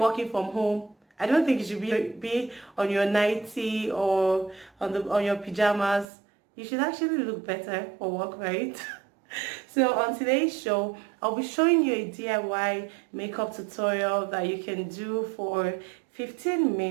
from home, I don't think you should be on your nightie or on your pajamas. You should actually look better for work, right? So on today's show, I'll be showing you a DIY makeup tutorial that you can do for 15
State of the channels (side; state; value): left; drops out; at 6.1 s